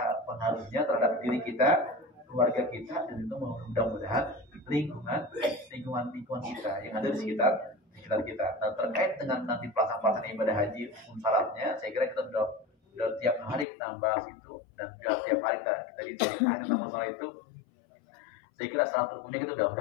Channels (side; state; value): right; drops out; at 13.7 s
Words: pengaruhnya terhadap diri kita, keluarga kita, dan itu mudah-mudahan lingkungan kita yang ada di sekitar kita. Nah, terkait dengan nanti pelaksanaan ibadah haji syaratnya, saya kira kita sudah tiap hari kita bahas itu, dan juga tiap hari kita ditanya sama sholat itu, saya kira salat rukunnya kita